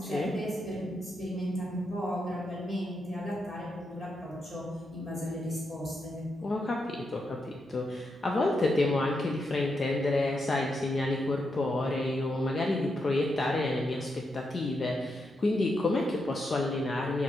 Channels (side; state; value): both; normal; correlation 0.83